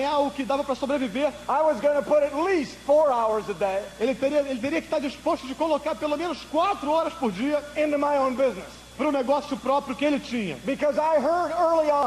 o que dava para sobreviver, I was going to put at least 4 hours a day. Ele teria que estar disposto de colocar pelo menos 4 horas por dia into my own business. Para o negócio próprio que ele tinha. Because I heard early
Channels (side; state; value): both; identical; correlation 1.00